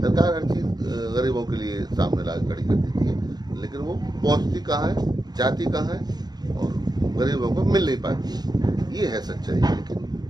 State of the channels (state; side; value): late; left; 0.20 ms